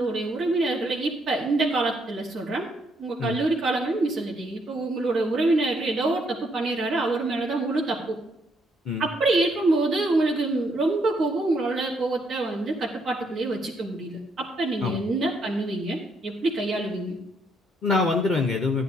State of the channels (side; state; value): both; normal; correlation 0.72